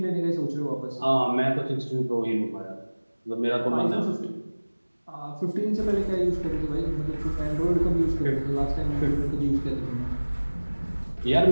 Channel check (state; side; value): inverted; both; correlation -1.00